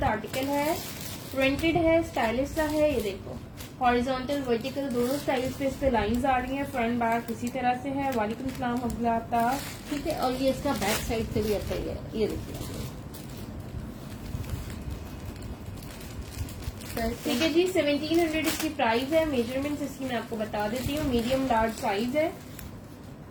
आर्टिकल है। प्रिंटेड है, स्टाइलिश सा है। ये देखो हॉरिजॉन्टल वर्टिकल दोनों स्टाइल्स पे इस पे लाइंस आ रही हैं। फ्रंट बैक इसी तरह से है। वालेकुम सलाम अब्दुल्ला। ठीक है, और ये इसका बैक साइड से भी ऐसा ही है। ये देखिए ठीक है जी, 1700 इसकी प्राइस है। मेजरमेंट्स इसकी मैं आपको बता देती हूँ। मीडियम लार्ज साइज है,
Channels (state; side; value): identical; both; correlation 1.00